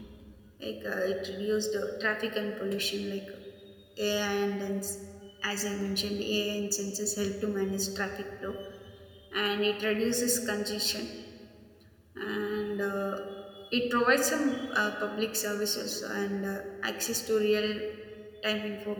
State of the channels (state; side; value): identical; both; correlation 1.00